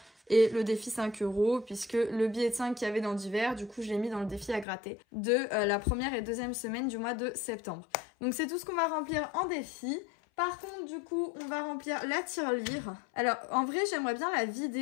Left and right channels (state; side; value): drops out; right; at 4.7 s